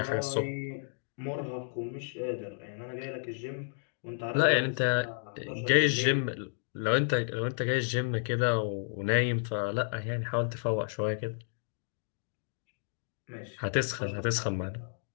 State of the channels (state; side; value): silent; right; digital silence